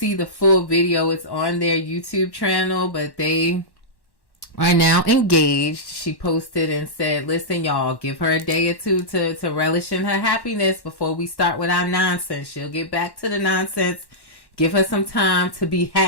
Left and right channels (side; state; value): right; late; 1.1 ms